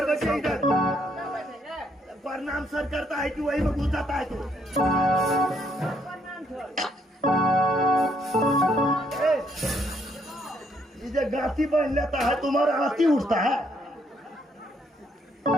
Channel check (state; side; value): normal; both; correlation 0.71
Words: प्रणाम सर करता है कि वही में घुस जाता है तू ये गाती बन लेता है तुम्हारा हाथी उठता है